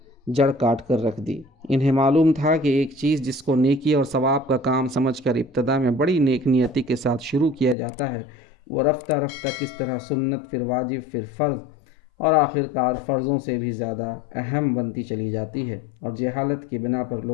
جڑ کاٹ کر رکھ دی۔ انہیں معلوم تھا کہ ایک چیز جس کو نیکی اور ثواب کا کام سمجھ کر ابتدا میں بڑی نیک نیتی کے ساتھ شروع کیا جاتا ہے وہ رفتہ رفتہ کس طرح سنت، پھر واجب، پھر فرض اور آخرکار فرضوں سے بھی زیادہ اہم بنتی چلی جاتی ہے، اور جہالت کی بنا پر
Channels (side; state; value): right; drops out; at 7.8 s